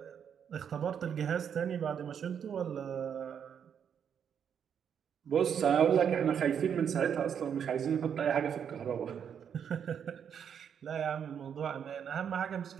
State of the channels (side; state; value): left; quieter; 8.0 dB